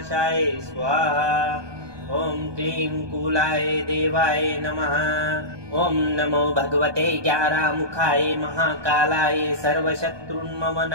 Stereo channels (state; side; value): late; left; 1.2 ms